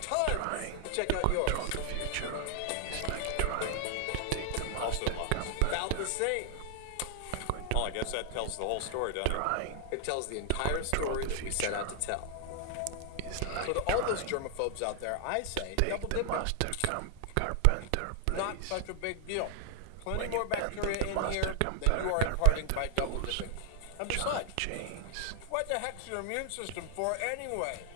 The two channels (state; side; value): different; both; correlation 0.00